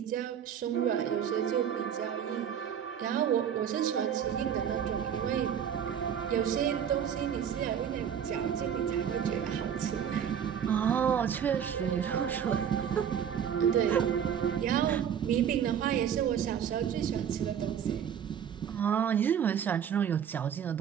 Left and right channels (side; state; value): left; quieter; 8.5 dB